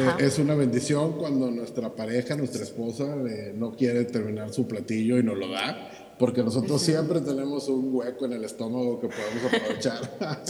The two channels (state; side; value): identical; both; correlation 1.00